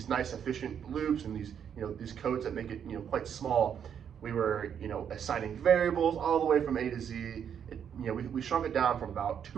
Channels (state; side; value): quieter; left; 8.3 dB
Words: nice efficient loops and these codes that make it quite small, we were assigning variables all the way from A to Z. We shrunk it down from about